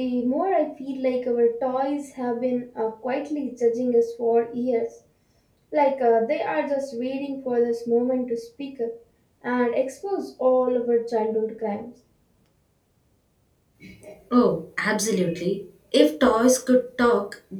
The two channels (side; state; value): both; identical; correlation 1.00